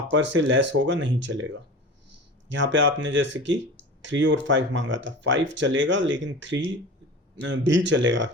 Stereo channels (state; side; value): normal; both; correlation 0.35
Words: से लेस होगा नहीं चलेगा। यहाँ पे आपने जैसे कि 3 और 5 मांगा था। 5 चलेगा लेकिन 3 भी चलेगा,